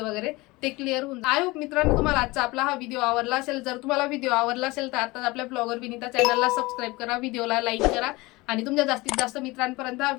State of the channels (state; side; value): quieter; right; 22.2 dB